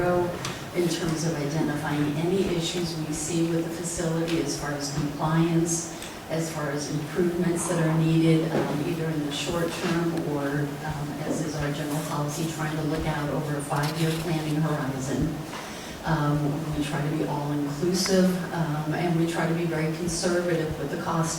in terms of identifying any issues we see with the facility as far as compliance, as far as improvements that are needed, either in the short term or, as is our general policy, trying to look out over a 5-year planning horizon. We try to be all-inclusive, and we try to be very conservative with the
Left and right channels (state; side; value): identical; both; correlation 1.00